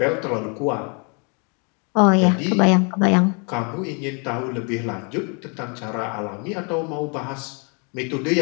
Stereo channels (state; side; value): quieter; right; 35.1 dB